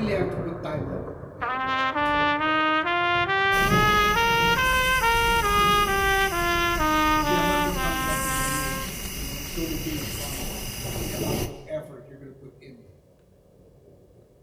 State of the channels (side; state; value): both; identical; correlation 1.00